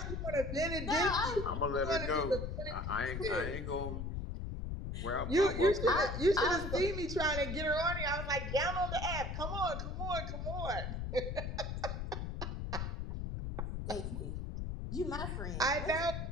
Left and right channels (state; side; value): noise; left; rumble, 4 dB below the sound